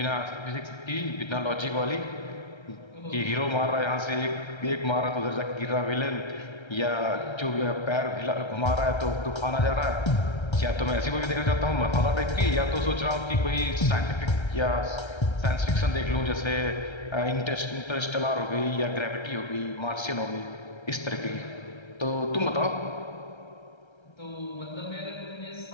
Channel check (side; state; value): right; late; 1.3 ms